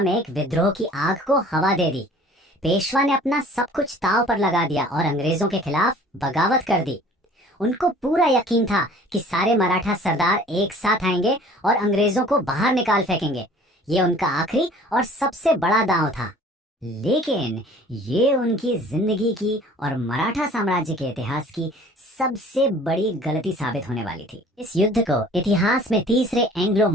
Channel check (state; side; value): normal; both; correlation 0.50